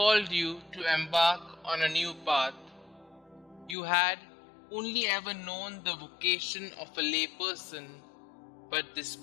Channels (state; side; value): drops out; right; at 3.8 s